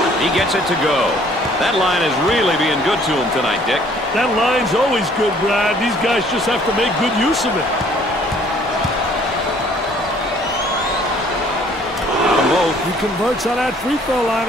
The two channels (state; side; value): normal; both; correlation 0.58